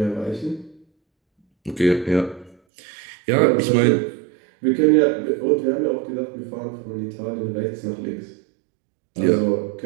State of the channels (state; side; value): drops out; left; at 2.6 s